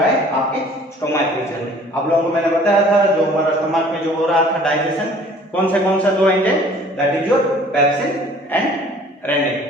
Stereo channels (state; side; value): normal; both; correlation 0.52